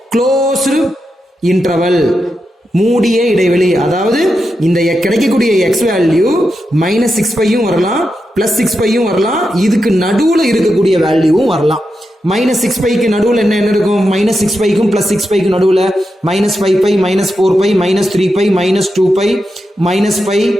closed interval, மூடிய இடைவெளி. அதாவது இந்த கிடைக்கக்கூடிய x வேல்யூ -6π யும் வரலாம் +6π யும் வரலாம், இதுக்கு நடுவுல இருக்கக்கூடிய வேல்யூவும் வரலாம். -6π க்கு நடுவுல என்ன இருக்கும்? -6π க்கும் +6π க்கும் நடுவுல -5π -4π -3π -2π -π,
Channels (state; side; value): normal; both; correlation 0.87